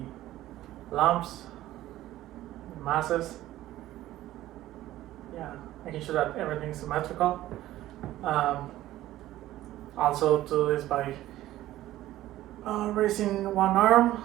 lumps, masses. Yeah, making sure that everything is symmetrical. Also do this by raising one arm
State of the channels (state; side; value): quieter; left; 14.8 dB